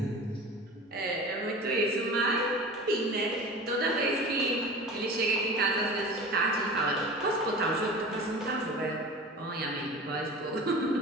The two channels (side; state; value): both; normal; correlation 0.36